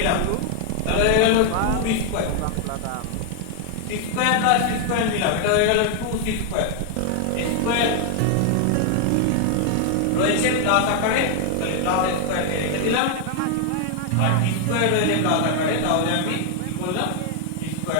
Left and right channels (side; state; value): both; different; correlation 0.00